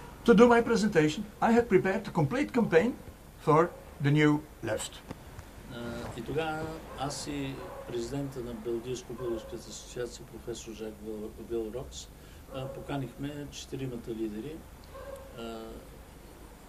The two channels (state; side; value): identical; both; correlation 1.00